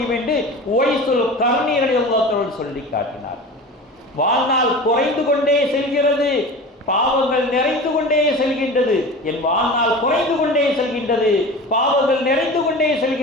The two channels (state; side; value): normal; both; correlation 0.34